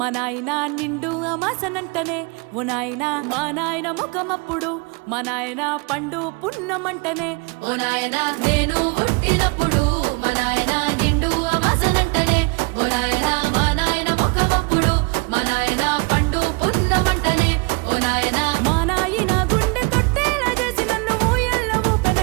నాయన నిండు అమాసనంటనే ఓ నాయన మా నాయన ముఖమప్పుడు మా నాయన పండు పున్నమంటనే ఓ నాయన నేను పుట్టినప్పుడు మా నాయన నిండు అమాసనంటనే ఓ నాయన మా నాయన ముఖమప్పుడు మా నాయన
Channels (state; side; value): quieter; left; 29.8 dB